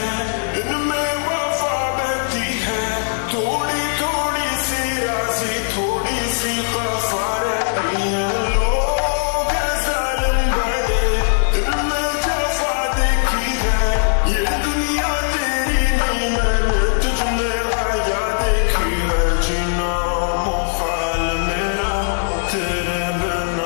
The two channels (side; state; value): right; silent; 66 dB below the other